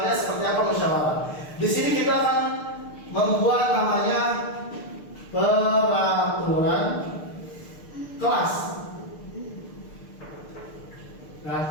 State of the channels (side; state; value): right; late; 6.6 ms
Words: seperti apa musyawarah. Di sini kita akan membuat namanya peraturan kelas.